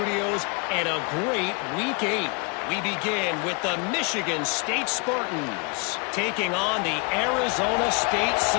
and a great Week 8. We begin with the Michigan State Spartans taking on the Arizona State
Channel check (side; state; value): right; quieter; 33.0 dB